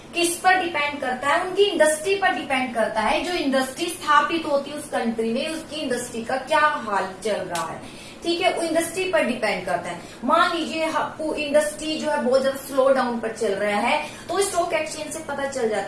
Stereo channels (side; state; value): both; identical; correlation 1.00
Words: किस पर डिपेंड करता है, उनकी इंडस्ट्री पर डिपेंड करता है। जो इंडस्ट्री स्थापित होती है उस कंट्री में, उसकी इंडस्ट्री का क्या हाल चल रहा है। ठीक है, वो इंडस्ट्री पर डिपेंड करता है। मान लीजिए इंडस्ट्री जो है बहुत ज्यादा स्लो डाउन पर चल रहा है तो स्टॉक एक्सचेंज से पता चल